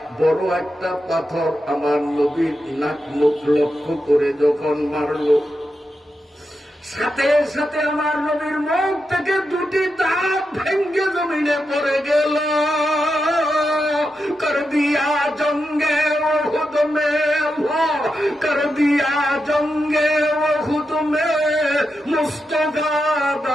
বড় একটা পাথর আমার নবীর নাক মুখ লক্ষ্য করে যখন মারল, সাথে সাথে আমার নবীর মুখ থেকে দুটি দাঁত ভেঙ্গে জমিনে পড়ে গেল। কর দিয়া জঙ্গে ওহুদ মে, কর দিয়া জঙ্গে ওহুদ মে মুস্তফা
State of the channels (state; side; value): normal; both; correlation 0.87